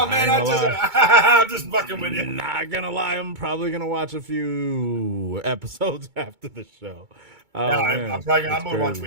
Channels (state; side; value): late; left; 2.2 ms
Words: man, I'm just fucking with you. Not gonna lie, I'm probably gonna watch a few episodes after the show. I'm gonna watch